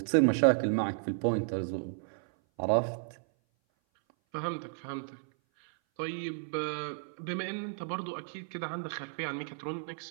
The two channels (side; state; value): left; silent; 56 dB below the other